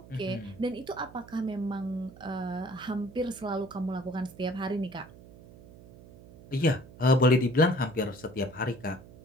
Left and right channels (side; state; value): right; noise; hum, 20 dB below the sound